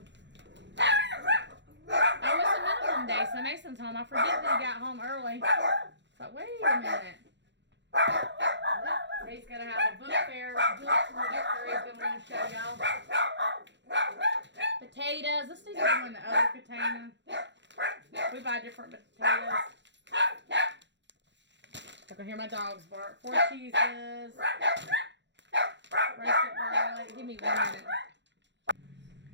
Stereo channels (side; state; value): left; late; 0.52 ms